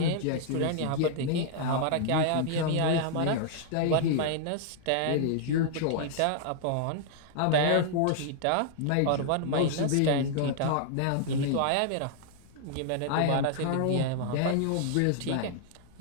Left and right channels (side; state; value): both; different; correlation -0.01